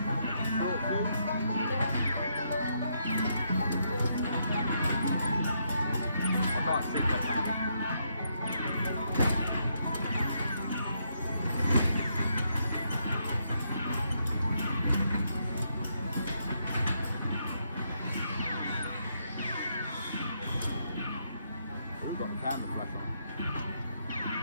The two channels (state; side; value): inverted; both; correlation -0.77